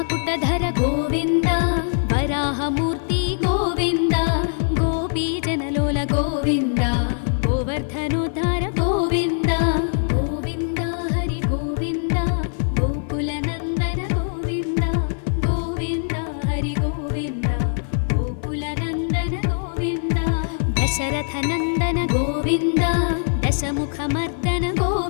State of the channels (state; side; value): silent; right; 55 dB below the other